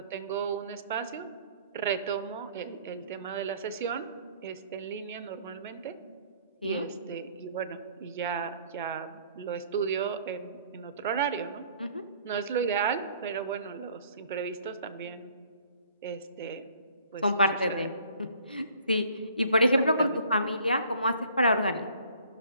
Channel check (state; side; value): inverted; both; correlation -0.56